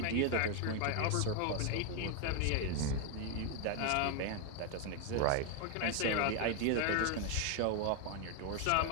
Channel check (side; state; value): both; different; correlation 0.01